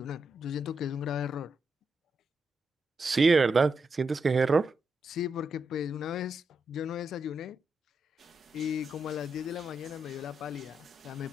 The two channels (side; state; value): both; normal; correlation 0.84